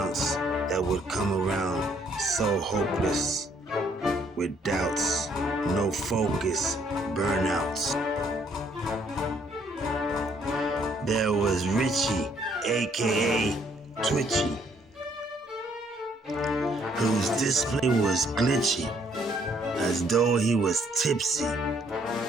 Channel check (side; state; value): both; normal; correlation 0.67